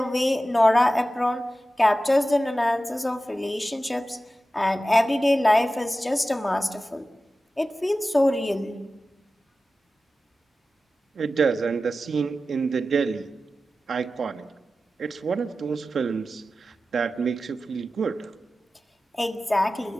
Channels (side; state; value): both; normal; correlation 0.94